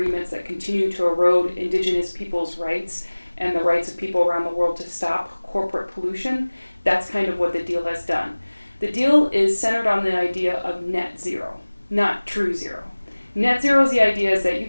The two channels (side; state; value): both; inverted; correlation -1.00